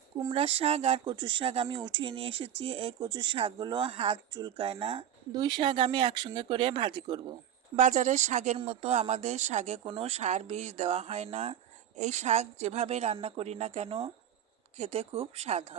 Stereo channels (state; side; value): quieter; left; 10.1 dB